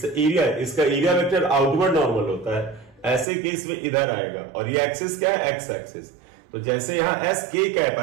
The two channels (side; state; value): left; drops out; at 3.2 s